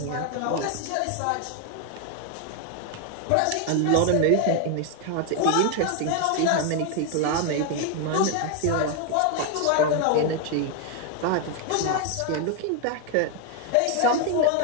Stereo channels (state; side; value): different; both; correlation 0.01